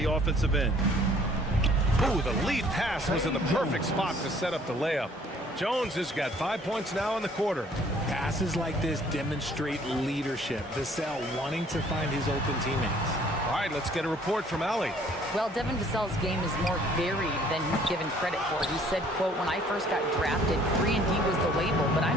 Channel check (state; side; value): normal; both; correlation 0.58